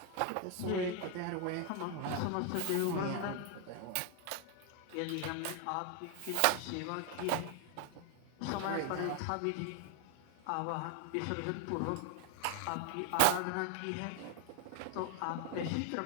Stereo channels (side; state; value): both; different; correlation 0.00